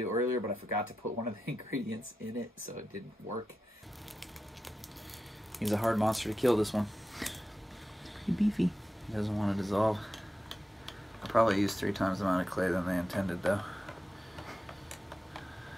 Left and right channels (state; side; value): normal; both; correlation 0.91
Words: earlier, but I forgot to put one of the ingredients in it, so it didn't work. He's a hard monster to kill, this one. Pretty beefy. He doesn't want to dissolve. I probably used 3 times the amount of clay than they intended, though.